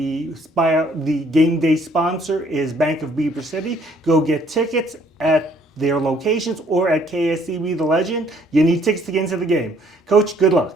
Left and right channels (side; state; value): both; normal; correlation 0.62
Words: game day sponsor is Bank of Beaver City. Go get tickets at their locations or at KSCB The Legend. You need tickets to get into the game. Coach, good